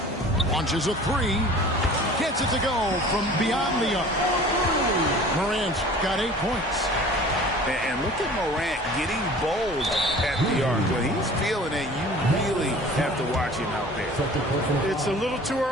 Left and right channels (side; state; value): both; normal; correlation 0.45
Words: Launches a three. Gets it to go from beyond the arc. Morant's got 8 points. And look at Morant getting bold at the arc. When he's feeling it, you really have to watch him out there. It's a little too